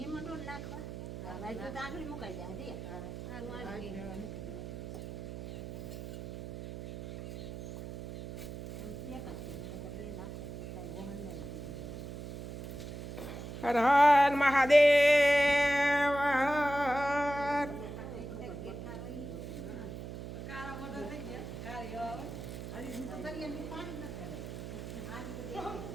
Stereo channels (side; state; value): right; noise; hum, 9 dB below the sound